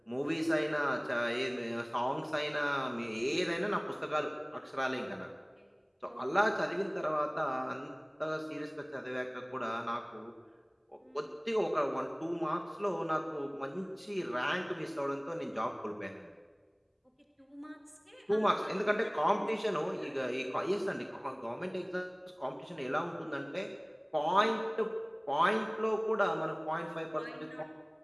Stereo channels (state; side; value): identical; both; correlation 1.00